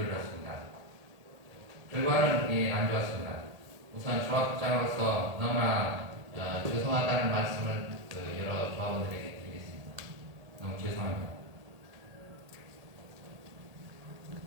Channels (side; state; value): left; late; 1.8 ms